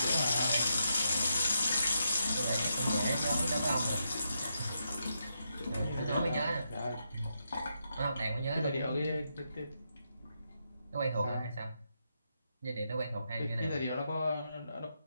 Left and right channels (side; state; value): both; inverted; correlation -0.82